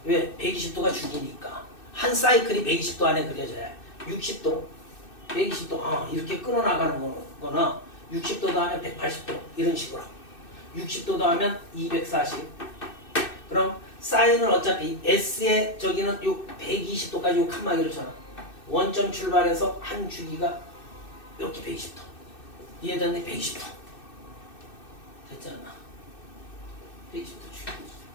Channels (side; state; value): right; late; 2.6 ms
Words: 왜? 120도가 주기니까. 한 사이클이 120도 안에 그려져야 해. 60도, 120도, 이렇게 끊어나가는 거나 60도 더하면 180도 이런 식으로. 60도 더하면 240. 그럼 사인은 어차피 S의 저기는 요 120도까지 요 칸막이를 쳐놔. 원점 출발해서 한 주기가 이렇게 120도. 이해됐네? 120도. 됐지 않나? 120도 주기.